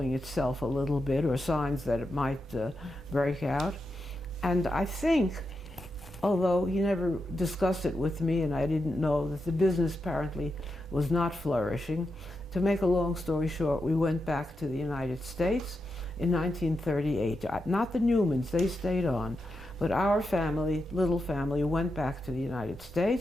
itself a little bit, or signs that it might break out. And I think, although he never discussed it with me and I didn't know, that the business apparently was not flourishing. To make a long story short, we went back to the United States in 1938. Not the Newmans, they stayed on. But our family, little family, went back to the United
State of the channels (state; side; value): normal; both; correlation 0.87